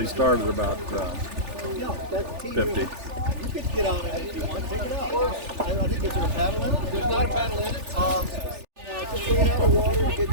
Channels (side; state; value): left; late; 3.4 ms